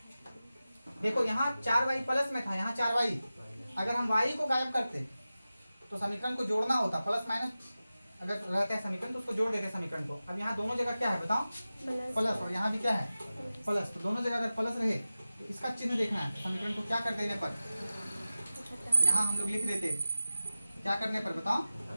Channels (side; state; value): both; inverted; correlation -0.95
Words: देखो यहाँ 4y प्लस में था, यहाँ 4y, अगर हम y को गायब करते तो समीकरण को जोड़ना होता, प्लस माइनस अगर रहता है समीकरण तो उसको जोड़ देते समीकरण को। अब यहाँ दोनों जगह क्या है बताओ, प्लस, और यहाँ भी क्या है प्लस, तो दोनों जगह अगर प्लस रहे तो इसका चिन्ह देखना है, समीकरण को क्या कर देने पर, यहाँ हम लोग लिख देते, क्या करने पर बताओ,